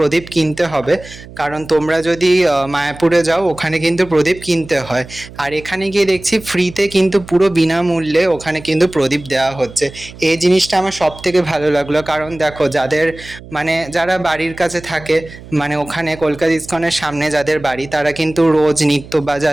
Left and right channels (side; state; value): right; noise; hum, 17 dB below the sound